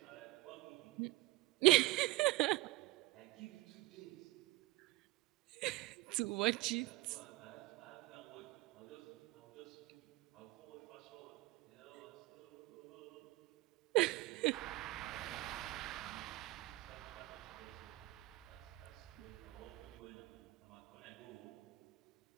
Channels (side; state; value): left; quieter; 20.7 dB